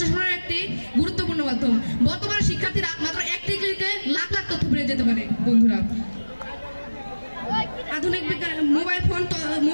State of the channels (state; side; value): inverted; both; correlation -1.00